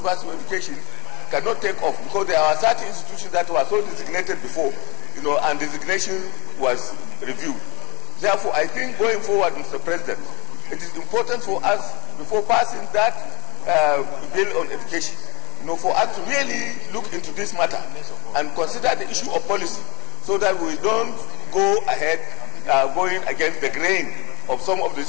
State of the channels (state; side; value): quieter; right; 27.4 dB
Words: of education cannot take off because there are certain institutions that were so designated before, and designation was reviewed. Therefore, I think going forward, Mr. President, it is important for us, before passing that bill on education, for us to really look into this matter and consider the issue of policy so that we don't go ahead going against the grain of some of the